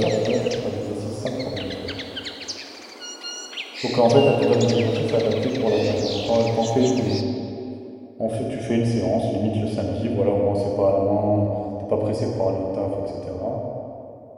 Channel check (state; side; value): identical; both; correlation 1.00